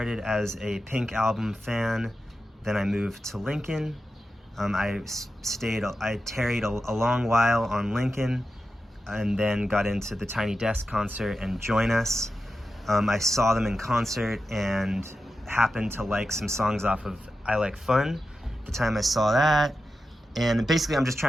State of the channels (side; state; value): both; normal; correlation 0.91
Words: as a Pink Album fan, then I moved to Lincoln. I tarried a long while on Lincoln, and then got into the Tiny Desk concert and Join Us. I saw them in concert and happened to like some songs off of I Like Fun the time I saw that. And basically I'm just